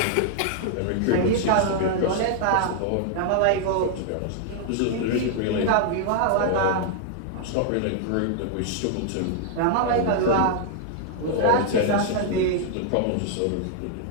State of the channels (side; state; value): both; different; correlation -0.01